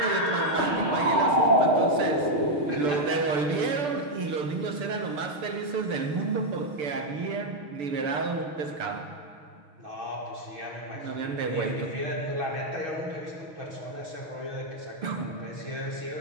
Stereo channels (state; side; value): late; left; 6.9 ms